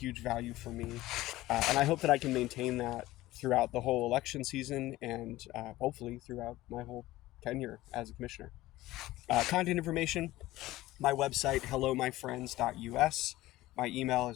value for me. And I hope that I can maintain that throughout the whole election season and hopefully throughout my whole tenure as a commissioner. Contact information, my website, hellomyfriends.us. My email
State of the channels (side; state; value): right; quieter; 17.0 dB